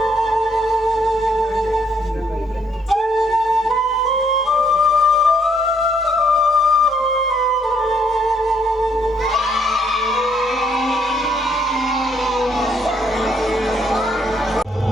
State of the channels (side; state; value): both; normal; correlation 0.70